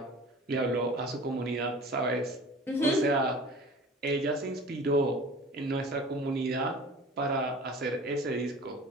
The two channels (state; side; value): normal; both; correlation 0.41